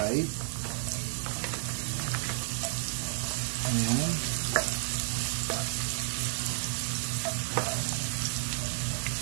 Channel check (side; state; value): left; silent; digital silence